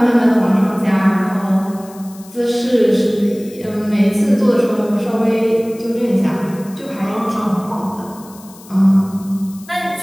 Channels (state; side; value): noise; left; hiss, 22 dB below the sound